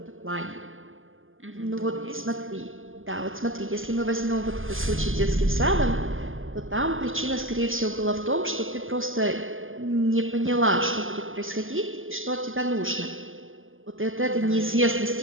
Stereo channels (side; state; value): left; late; 0.59 ms